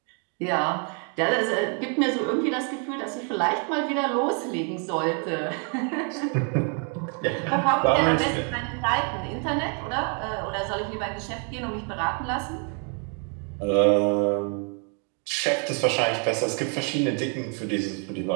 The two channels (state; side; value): quieter; left; 39.8 dB